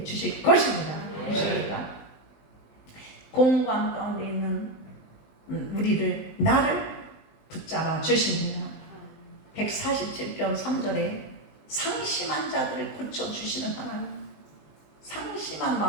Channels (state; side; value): late; right; 19 ms